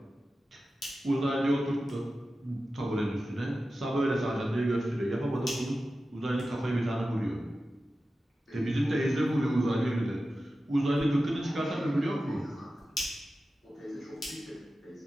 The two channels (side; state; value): both; normal; correlation 0.93